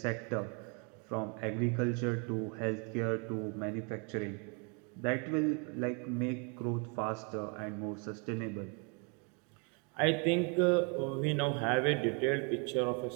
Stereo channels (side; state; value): left; quieter; 35.5 dB